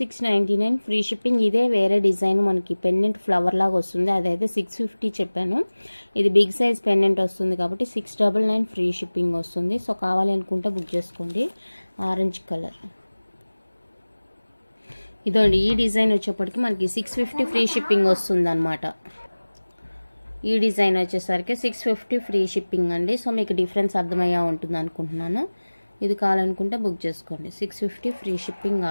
free shipping. ఇదే వేరే డిజైన్ మనకి పెండెంట్ ఫ్లవర్ లాగా వస్తుంది, అదైతే 650 చెప్పాను. ఇది బిగ్ సైజ్ పెండెంట్ వస్తుంది కాబట్టి 699 ఫ్రీ షిప్పింగ్ వస్తుంది. సో కావాలి అనుకుంటే బుక్ చేసుకోండి. ఆరెంజ్ కలర్ ఇదండి. ఈ డిజైన్ వచ్చేప్పటికి మనకి 650 ఫ్రీ షిప్పింగ్ వస్తుంది అనమాట. ఈ డిజైన్ వచ్చేసరికి 650 ఫ్రీ షిప్పింగ్ అండి. సో మీకు డిఫరెన్స్ అర్థమయ్యా ఉంటుంది అనుకుంటున్నాను. ఇది కావాలనుకుంటే బుక్ చేసుకోండి. 650 free shipping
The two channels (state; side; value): inverted; both; correlation -1.00